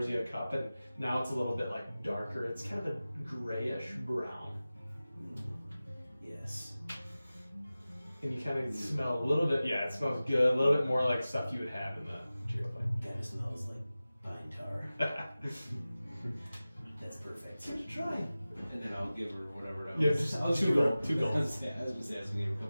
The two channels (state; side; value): inverted; both; correlation -0.96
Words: you a cup, and now it's a little bit like darker. It's kind of a grayish brown. Yes. And you kind of smell a little bit, yeah, it smells good, a little bit more like stuff you would have in the Cheerio Kind of smells like pine tar. plate. That's perfect. Give it a try. And then I'll give her whatever that Yeah, was. just I'll two give her- gold, 2 gold. I was just asking to give her a